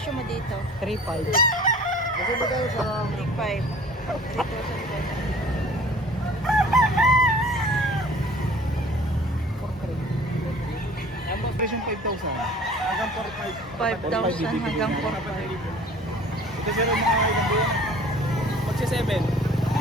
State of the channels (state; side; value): normal; both; correlation 0.48